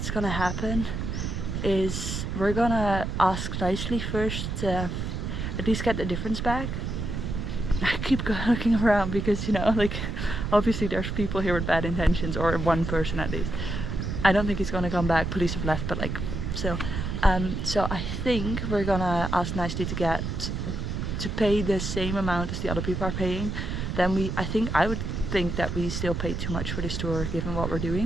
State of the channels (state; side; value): noise; right; rumble, 3 dB below the sound